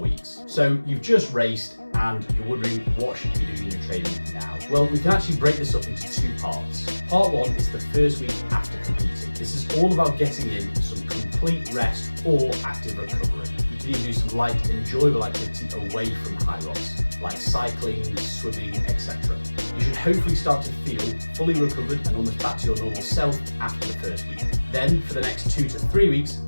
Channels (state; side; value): inverted; both; correlation -1.00